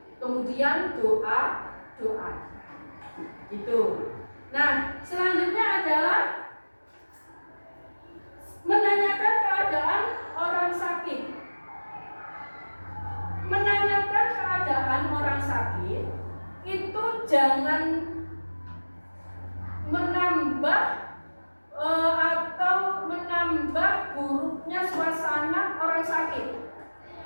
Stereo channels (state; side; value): inverted; both; correlation -1.00